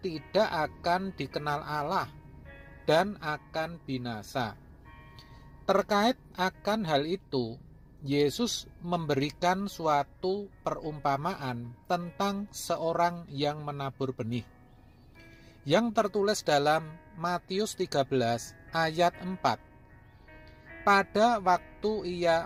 tidak akan dikenal Allah dan akan binasa. Terkait akan hal itu, Yesus memberikan suatu perumpamaan tentang seorang yang menabur benih, yang tertulis dalam Matius 13 ayat 4. Pada waktu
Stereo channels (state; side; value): identical; both; correlation 1.00